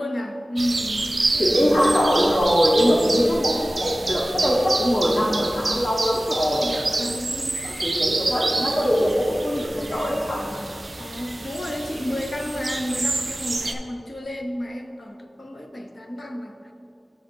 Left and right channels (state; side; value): normal; both; correlation 0.96